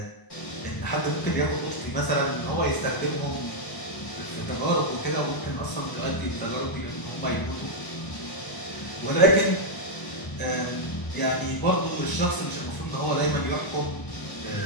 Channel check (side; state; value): right; late; 1.0 ms